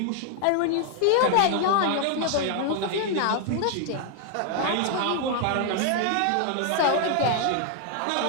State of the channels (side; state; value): both; different; correlation 0.00